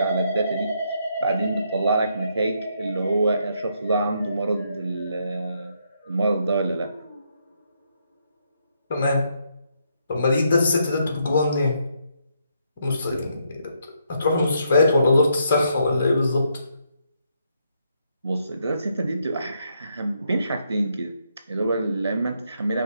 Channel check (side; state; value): both; inverted; correlation -0.76